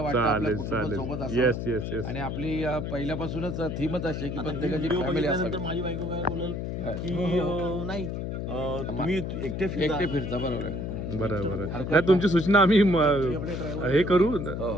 आपल्या कुटुंबासोबत येस असावं. येस येस आणि आपली पहिल्यापासूनच थीमच अशी आहे की प्रत्येकाची फॅमिली असावी. माझी बायको काय बोलल की नाही तुम्ही एकटे फिरता. बरोबर आहे. बरं नाही तुमची सूचना आम्ही हे करू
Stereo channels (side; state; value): left; noise; hum, 4 dB below the sound